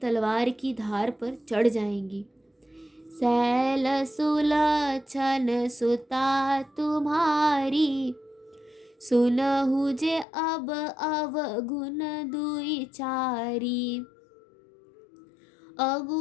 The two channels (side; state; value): right; drops out; at 10.2 s